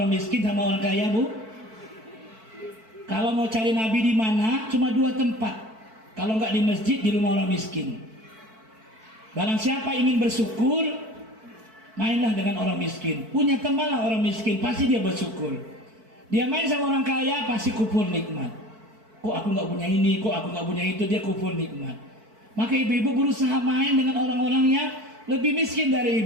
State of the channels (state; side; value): late; left; 4.5 ms